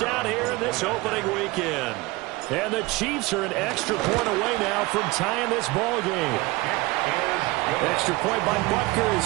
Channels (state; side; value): quieter; left; 22.1 dB